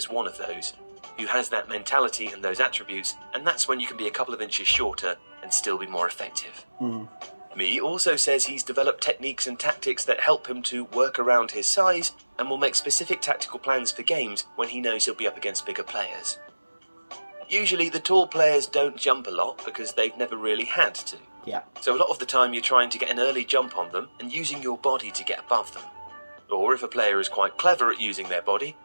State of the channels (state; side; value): inverted; both; correlation -1.00